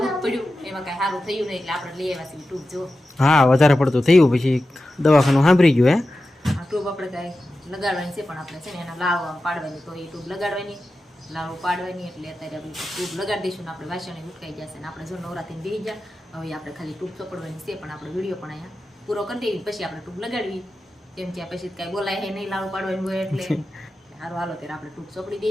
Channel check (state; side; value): normal; both; correlation 0.93